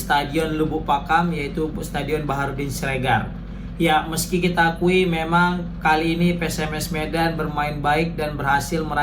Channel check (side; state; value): both; identical; correlation 1.00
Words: Lubuk Pakam, yaitu Stadion Baharudin Siregar. Ya, meski kita akui memang kali ini PSMS Medan bermain baik dan berhasil